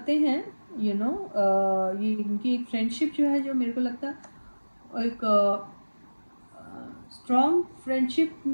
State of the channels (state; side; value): inverted; both; correlation -1.00